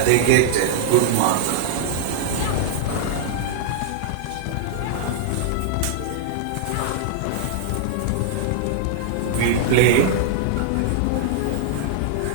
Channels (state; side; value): different; both; correlation -0.01